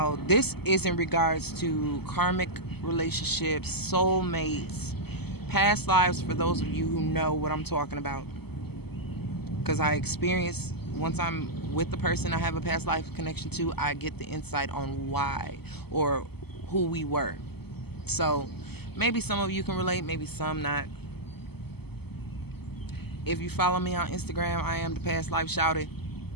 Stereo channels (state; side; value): late; right; 0.96 ms